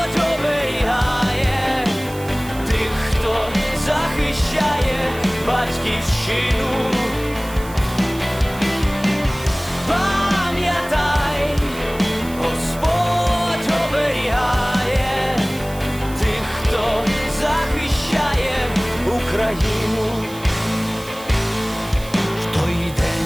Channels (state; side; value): noise; right; hiss, 18 dB below the sound